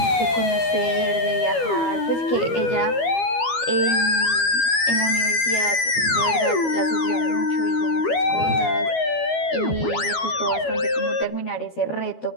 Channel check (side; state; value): right; late; 12 ms